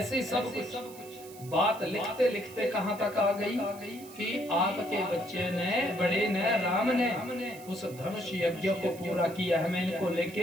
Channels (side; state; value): right; noise; hiss, 19 dB below the sound